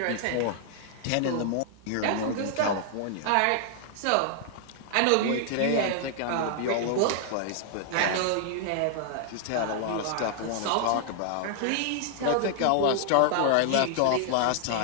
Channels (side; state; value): both; different; correlation -0.01